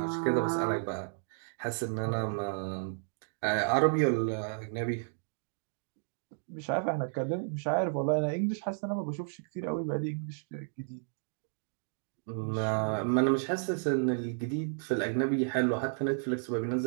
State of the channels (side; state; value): left; silent; digital silence